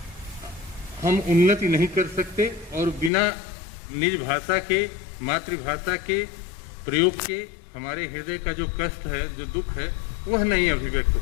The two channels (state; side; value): drops out; right; at 3.1 s